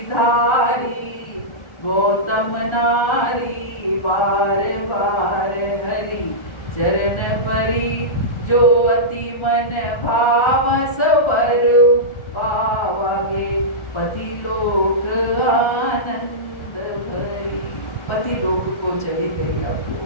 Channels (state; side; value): late; right; 1.4 ms